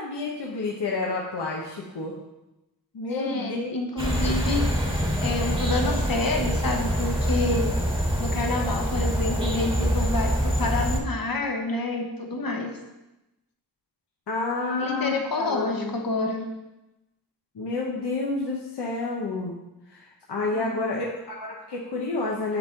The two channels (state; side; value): normal; both; correlation 0.44